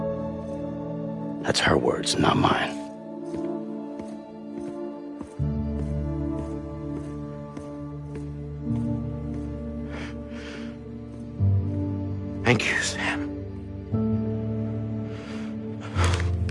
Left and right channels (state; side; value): identical; both; correlation 1.00